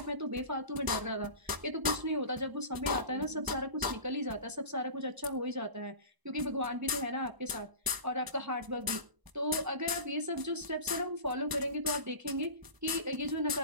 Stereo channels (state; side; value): late; left; 1.0 ms